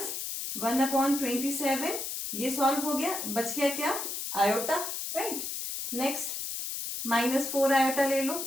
1 upon 27, ये सॉल्व हो गया, बच गया क्या आयोटा, राइट. नेक्स्ट -4 आयोटा ले लो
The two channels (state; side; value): noise; left; hiss, 4 dB below the sound